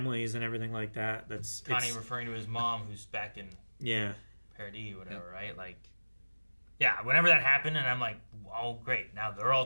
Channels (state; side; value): inverted; both; correlation -1.00